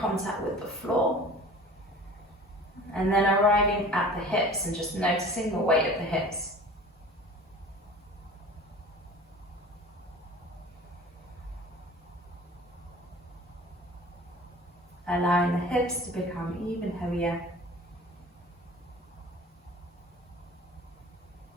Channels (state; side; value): normal; both; correlation 0.42